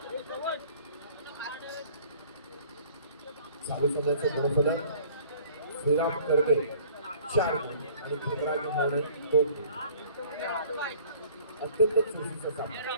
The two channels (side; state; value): both; inverted; correlation -0.52